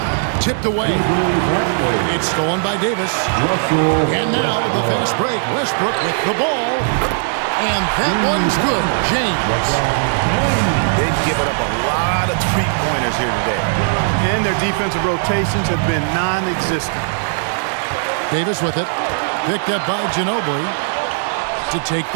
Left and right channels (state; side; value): silent; left; digital silence